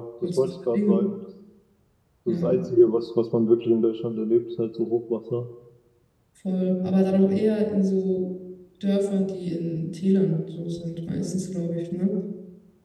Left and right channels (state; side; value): identical; both; correlation 1.00